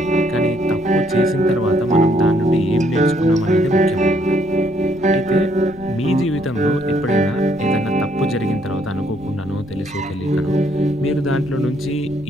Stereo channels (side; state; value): left; noise; rumble, 21 dB below the sound